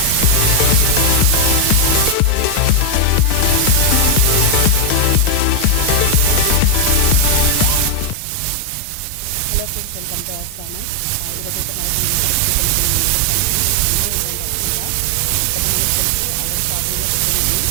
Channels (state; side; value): different; both; correlation 0.00